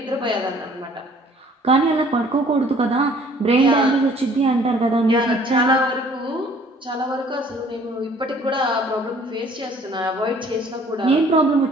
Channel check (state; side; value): normal; both; correlation 0.56